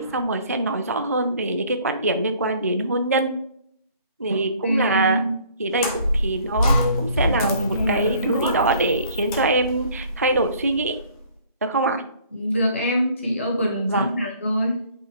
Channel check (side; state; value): both; inverted; correlation -0.56